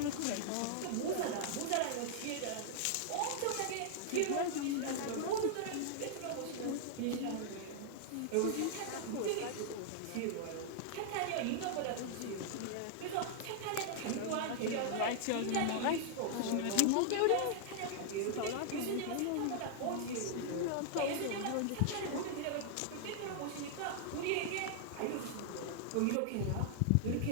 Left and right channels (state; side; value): different; both; correlation -0.01